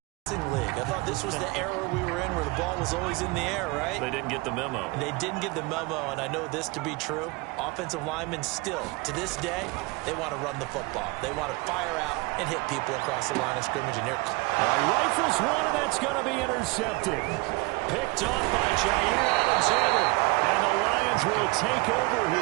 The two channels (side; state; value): left; quieter; 25.1 dB